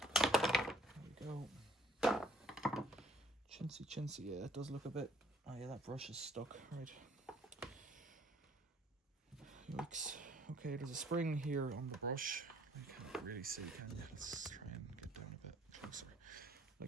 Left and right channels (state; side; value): normal; both; correlation 0.59